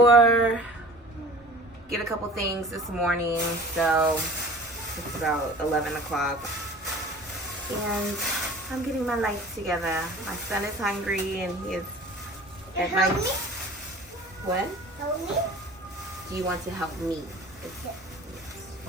get a couple things this morning, so it's about 11 o'clock. And I'm getting my life together. My son is hungry and he is at my... What? Help me? Do you want to help me? Yes.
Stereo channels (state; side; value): normal; both; correlation 0.43